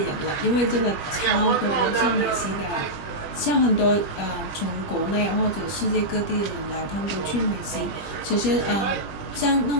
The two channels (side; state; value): right; late; 20 ms